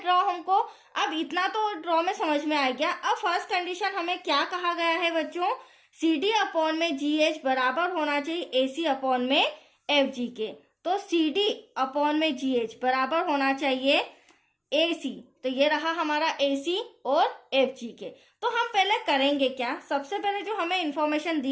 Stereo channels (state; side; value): identical; both; correlation 1.00